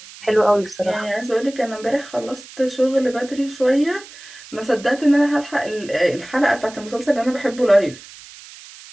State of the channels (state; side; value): noise; right; hiss, 18 dB below the sound